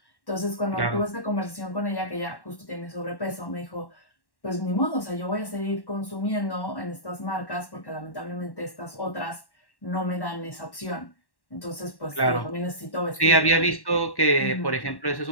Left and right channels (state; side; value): late; right; 1.1 ms